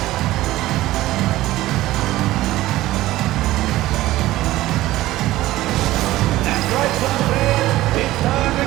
That's right, Suns fans. It's time to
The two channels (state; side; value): quieter; left; 16.3 dB